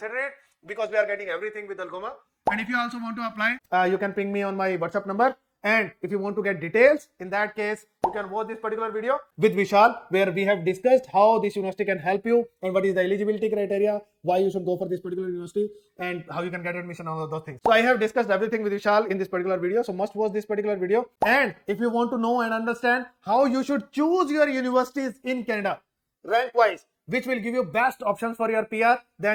it, because we are getting everything with ALGOMA. And if you also want to apply, you can ping me on my WhatsApp number. And if you want to get details, in that case, you can watch this particular video with Vishal, where we have discussed how this university can help you and what is the eligibility criteria, why you should go for this particular university, and how you can get admission, all of those things. So I have discussed everything with Vishal in this particular video. So must watch this particular video. And if you want to know and understand how you should choose your universities in Canada, rank wise, which will give you best options for your PR,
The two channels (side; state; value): both; identical; correlation 1.00